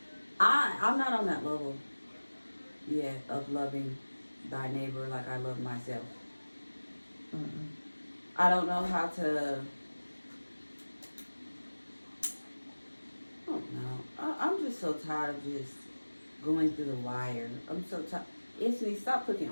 I'm not on that level yet of loving thy neighbor like I love myself. Mm-mm. I don't know how to. I don't know. I'm just so tired of just going through the wire. I'm so tired. Anthony, stop clicking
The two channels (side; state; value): both; inverted; correlation -1.00